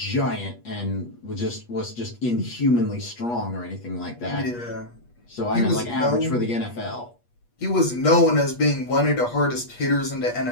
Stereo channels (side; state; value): right; late; 8.4 ms